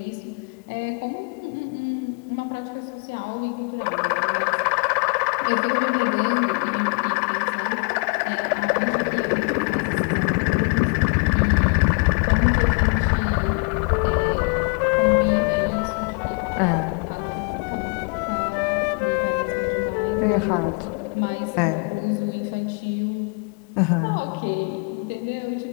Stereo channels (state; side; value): quieter; right; 35.8 dB